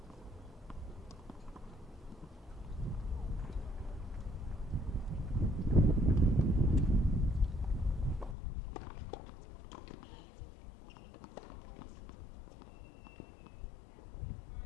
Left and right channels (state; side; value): drops out; right; at 8.3 s